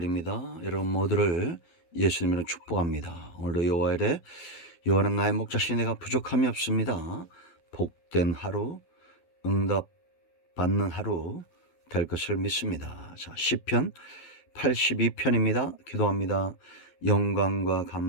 여러분 모두를 예수님으로 축복합니다. 오늘도 여호와의 래 여호와는 나의 목자시니 내가 부족함이 없습니다. 복된 하루, 응답 받는 하루 될 것을 믿습니다. 자, 시편 82편입니다. 기도합니다. 영광과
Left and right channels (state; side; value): late; right; 12 ms